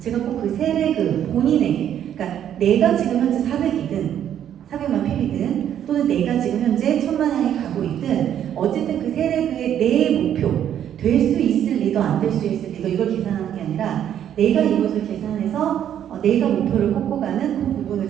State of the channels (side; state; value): left; quieter; 10.1 dB